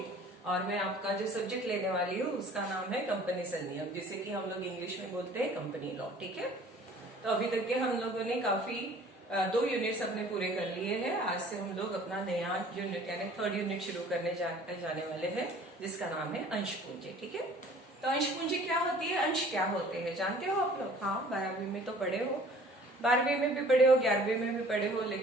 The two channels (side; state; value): both; normal; correlation 0.51